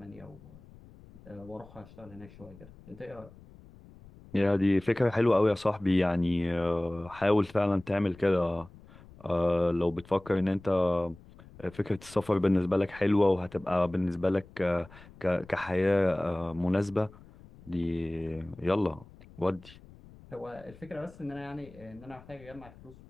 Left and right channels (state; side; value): noise; left; rumble, 22 dB below the sound